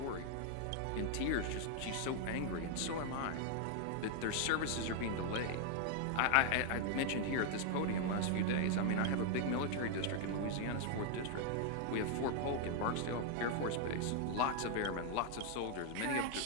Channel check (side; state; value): both; different; correlation 0.00